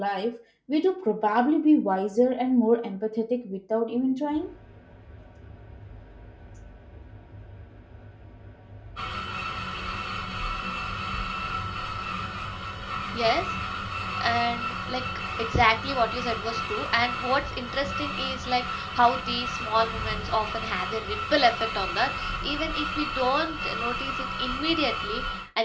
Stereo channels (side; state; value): both; identical; correlation 1.00